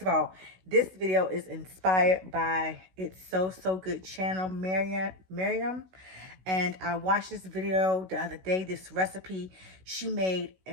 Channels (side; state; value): left; late; 16 ms